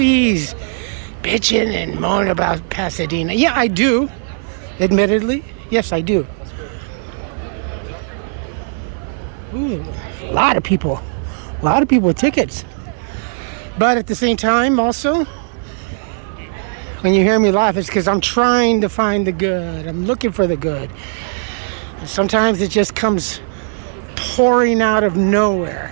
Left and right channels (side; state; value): left; silent; 57 dB below the other